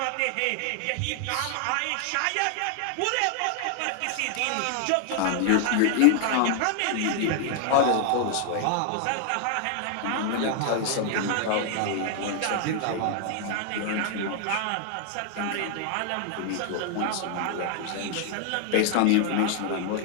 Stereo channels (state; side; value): different; both; correlation 0.00